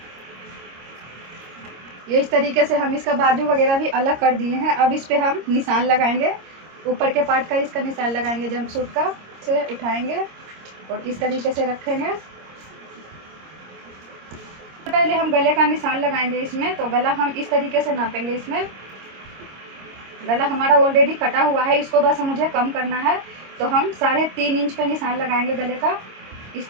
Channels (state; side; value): late; left; 26 ms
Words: ये इस तरीके से हम इसका बाजू वगैरह भी अलग कर दिए हैं। अब इस पे हम निशान लगाएंगे, ऊपर के पार्ट का इसका निशान लगाएंगे जंप सूट का। से उठाएंगे और इस तरीके से रखेंगे। पहले हम गले का निशान लगाएंगे इसमें। तो गला हम इस तरीके से नापेंगे। इसमें गला हमारा ऑलरेडी कटा हुआ है, इसको बस मुझे कम करना है। तो हम 3.5 इंच पे निशान लगाएंगे गले का इस